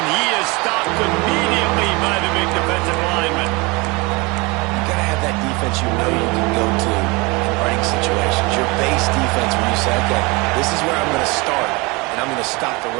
he is stopped immediately by the big defensive lineman. You got to have that defense you know you can go to in running situations. Your base defense when you say, okay, this is where I'm going to start. And I'm going to stop the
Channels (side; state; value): left; quieter; 26.0 dB